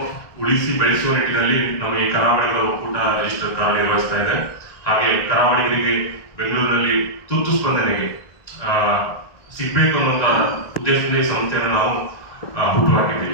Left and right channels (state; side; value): late; right; 1.5 ms